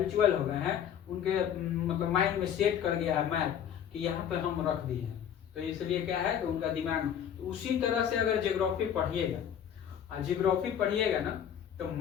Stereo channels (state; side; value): quieter; right; 9.1 dB